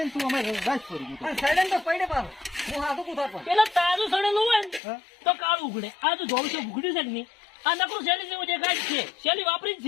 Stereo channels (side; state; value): right; drops out; at 4.8 s